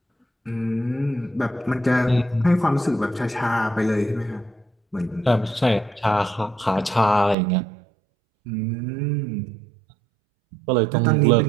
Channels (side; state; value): left; drops out; at 7.4 s